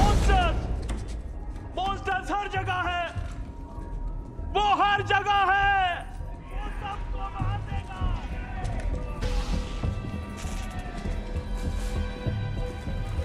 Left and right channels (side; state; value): both; identical; correlation 1.00